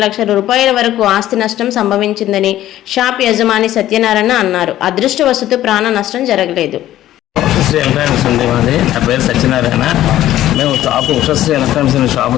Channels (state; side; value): quieter; right; 13.5 dB